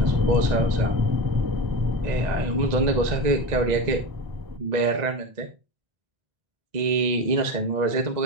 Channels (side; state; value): left; late; 1.0 ms